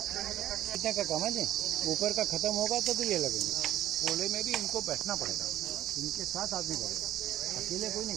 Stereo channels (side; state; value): left; quieter; 12.9 dB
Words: कितने का कम है जी, ऊपर का खत्म होगा तो ये लगेंगे। कूले में भी इनको बैठना पड़ेगा, इनके साथ आदमी बैठेगा, अकेले कोई नहीं